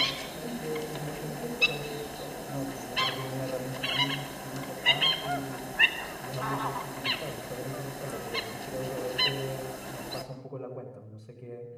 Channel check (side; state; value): both; identical; correlation 1.00